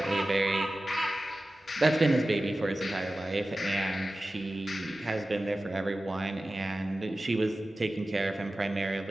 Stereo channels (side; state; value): both; normal; correlation 0.95